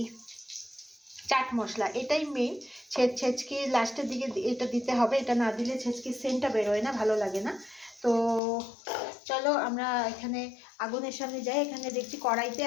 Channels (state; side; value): drops out; right; at 8.4 s